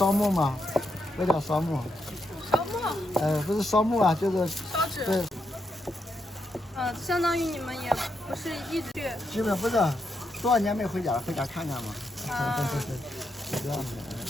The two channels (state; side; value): normal; both; correlation 0.81